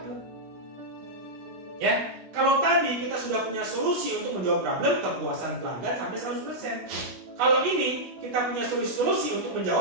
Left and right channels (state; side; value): late; left; 16 ms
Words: Ya, kalau tadi kita sudah punya solusi untuk menjawab problem, kepuasan pelanggan sampai 100%. Kalau ini kita punya solusi untuk